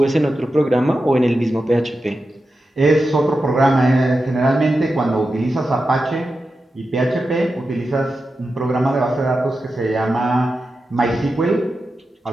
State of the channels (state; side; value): normal; both; correlation 0.90